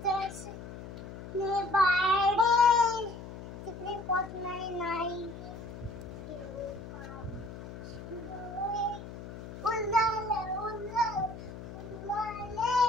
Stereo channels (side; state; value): left; noise; hum, 12 dB below the sound